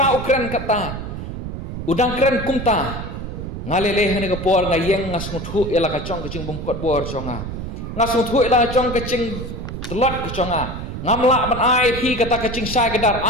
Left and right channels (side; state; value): right; noise; rumble, 7 dB below the sound